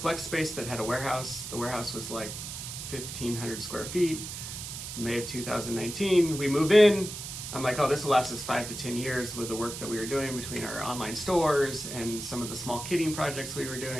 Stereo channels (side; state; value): right; noise; hiss, 8 dB below the sound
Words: space that had a warehouse. The warehouse was like 1,500 square feet. May of 2019, we move in. I'm like, oh, this will last us 5 to 10 years with the work that we were doing between our online stores and some of the small kitting projects we were